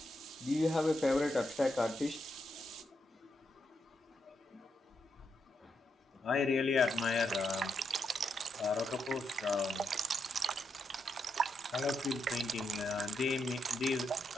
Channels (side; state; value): both; normal; correlation 0.82